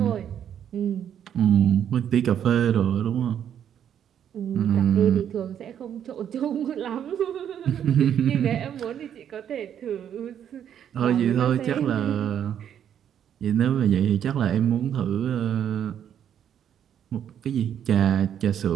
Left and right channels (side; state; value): left; quieter; 9.4 dB